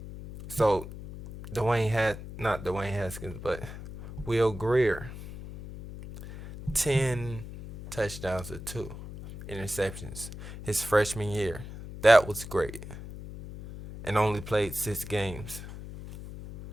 So not Dwayne Haskins, but Will Greer, 10 touchdowns to 2 interceptions his freshman year. That was great. And only played 6 games.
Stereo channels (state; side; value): noise; left; hum, 11 dB below the sound